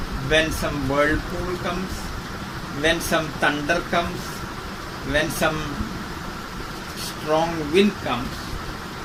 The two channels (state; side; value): identical; both; correlation 1.00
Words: when some whirlpool comes, when some thunder comes, when some strong wind comes,